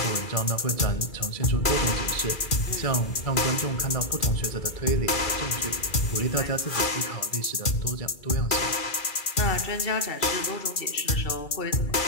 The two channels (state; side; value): late; right; 2.4 ms